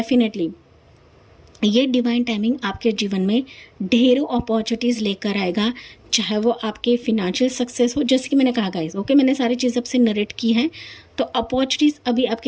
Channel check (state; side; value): identical; both; correlation 1.00